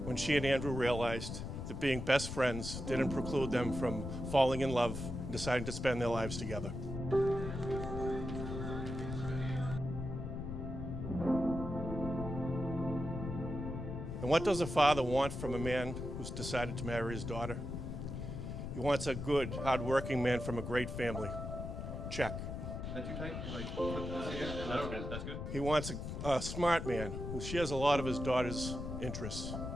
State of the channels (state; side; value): noise; left; rumble, 5 dB below the sound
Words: when she and Andrew realized that being best friends didn't preclude them from falling in love and deciding to spend their lives together. And what does a father want from a man who's decided to marry his daughter? He wants a good, hard-working man from a great family. Check. Is that too tight? Like, put this here? No, that's good. He wants a smart man who shares a lot of his daughter's interests.